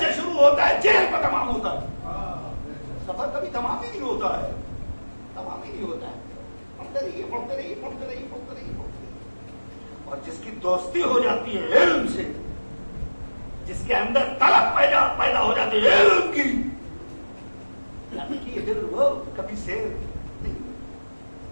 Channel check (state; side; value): inverted; both; correlation -1.00